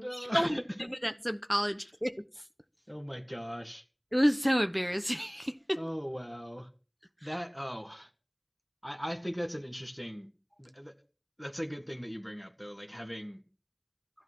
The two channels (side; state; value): both; identical; correlation 1.00